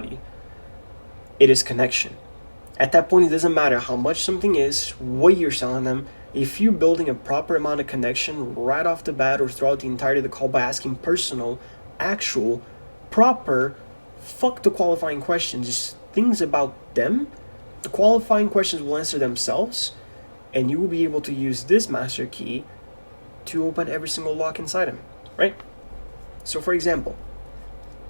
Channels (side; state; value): both; inverted; correlation -1.00